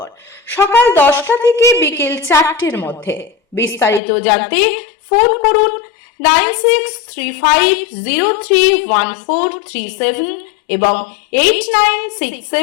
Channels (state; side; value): drops out; right; at 4.0 s